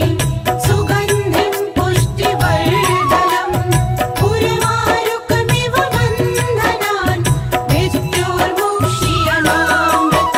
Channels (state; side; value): identical; both; correlation 1.00